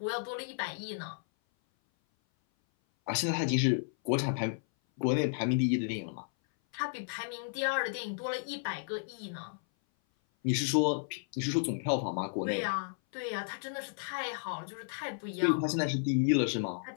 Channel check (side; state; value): right; silent; 56 dB below the other